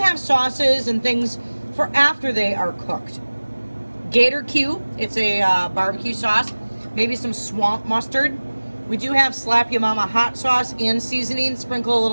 have sauces and things for after they are cooked. Gator Q, it's a barbecue sauce. Maybe some swamp mustard. We do have Slap Ya Mama hot sauce and seasoning. Sprinkle a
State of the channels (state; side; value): inverted; both; correlation -1.00